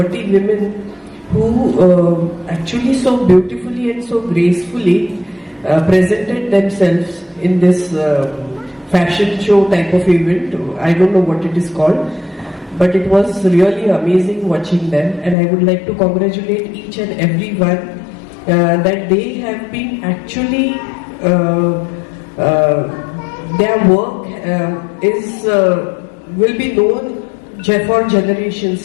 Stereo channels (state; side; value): drops out; right; at 15.4 s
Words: women who actually so beautifully and so gracefully presented themselves in this fashion show type of event. I don't know what it is called, but it was really amazing watching them, and I would like to congratulate each and every one that they have been actually their work will be known for